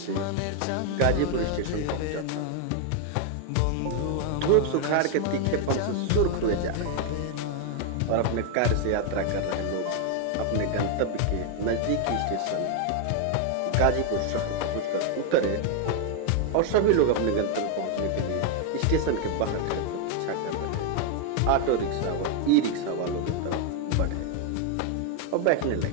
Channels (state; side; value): different; both; correlation 0.01